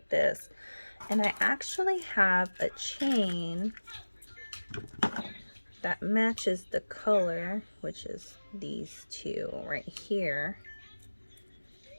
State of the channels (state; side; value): inverted; both; correlation -1.00